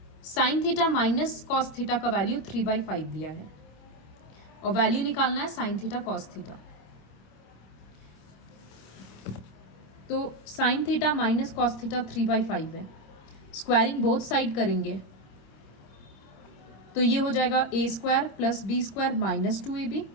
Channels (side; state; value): right; late; 26 ms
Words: sine theta minus cos theta का वैल्यू 3/5 दिया है और वैल्यू निकालना है साइन थीटा कॉस थीटा। तो sine theta minus cos theta 3/5 है, स्क्वायरिंग बोथ साइड करेंगे तो ये हो जाएगा a square plus b square minus 2ab,